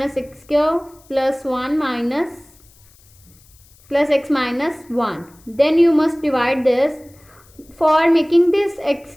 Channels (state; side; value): noise; left; hiss, 29 dB below the sound